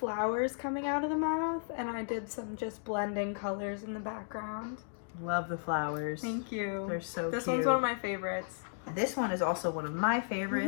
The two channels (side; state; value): right; silent; digital silence